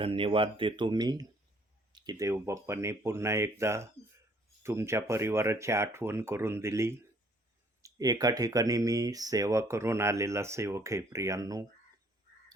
देतो मी की देवबाप्पाने पुन्हा एकदा तुमच्या परिवाराची आठवण करून दिली. एका ठिकाणी मी सेवा करून आलेला सेवक आहे प्रियांनो,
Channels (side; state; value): both; normal; correlation 0.62